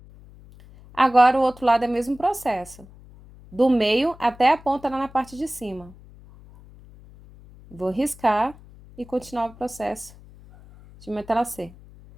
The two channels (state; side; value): noise; left; hum, 22 dB below the sound